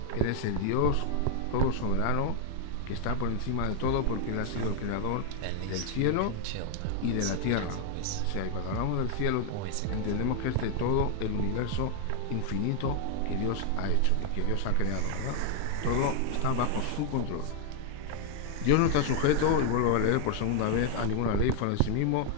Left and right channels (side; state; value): both; different; correlation 0.00